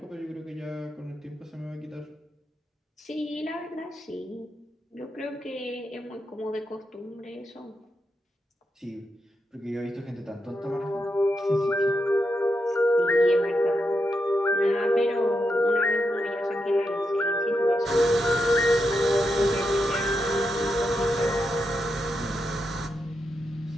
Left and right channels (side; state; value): both; normal; correlation 0.85